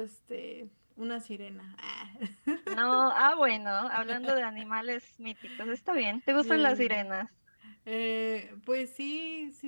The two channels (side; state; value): both; inverted; correlation -1.00